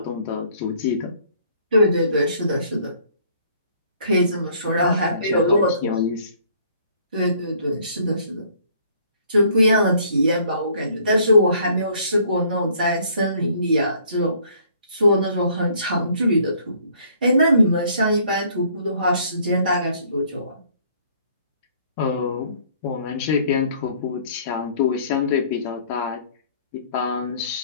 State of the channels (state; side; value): inverted; both; correlation -0.60